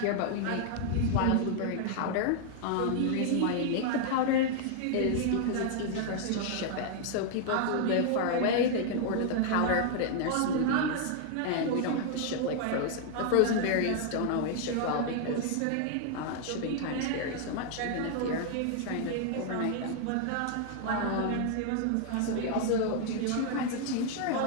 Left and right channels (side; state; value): both; different; correlation 0.00